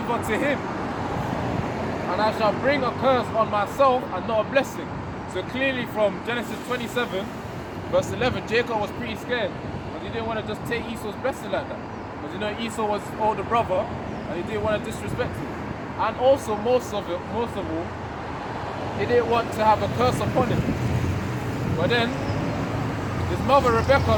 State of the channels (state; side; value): identical; both; correlation 1.00